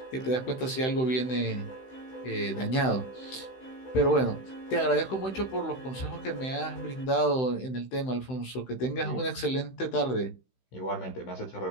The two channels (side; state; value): right; late; 16 ms